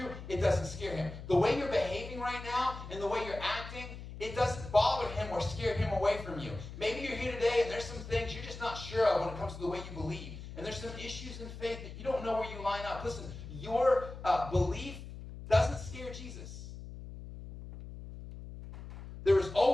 it doesn't scare him. The way you're behaving right now and the way you're acting, it doesn't bother him or scare him away from you. Maybe you're here today and there's some things you're just not sure of when it comes to the way you believe. And there's some issues in faith that you don't know where you line up. Listen, your belief doesn't scare Jesus. There is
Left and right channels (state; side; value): noise; left; hum, 12 dB below the sound